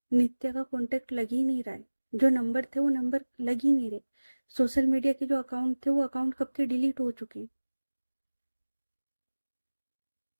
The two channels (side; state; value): both; inverted; correlation -1.00